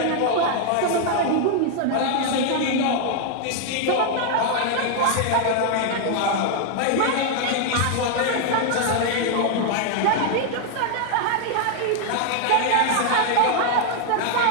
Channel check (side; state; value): both; different; correlation 0.00